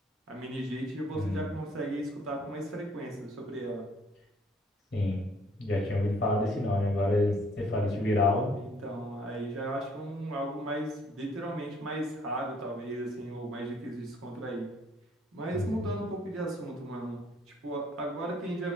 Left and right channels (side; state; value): both; normal; correlation 0.62